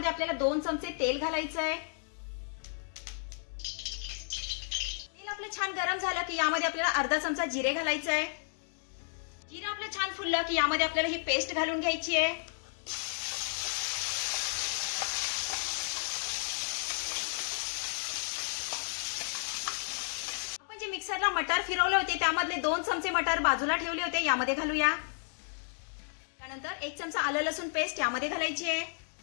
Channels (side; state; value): right; silent; digital silence